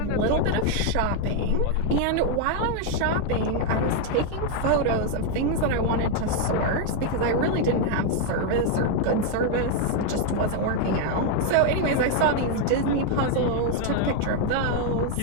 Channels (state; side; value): different; both; correlation 0.01